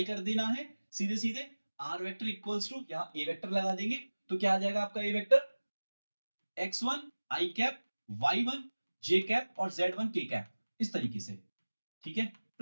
कर देना है सीधे सीधे, आर वेक्टर इक्वल्स टू, यहां ए वेक्टर लगा देंगे, तो क्या आ जाएगा आपका a vector, x1 i cap, y1 j cap और z1 k कैप, इस तरीके से, ठीक है।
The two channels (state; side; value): inverted; both; correlation -1.00